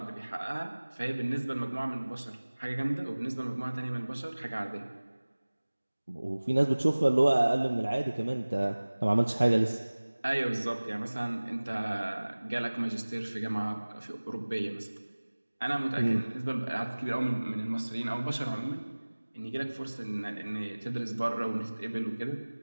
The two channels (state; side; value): inverted; both; correlation -1.00